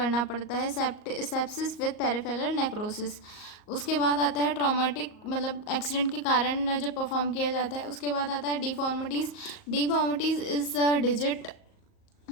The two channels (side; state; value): right; late; 38 ms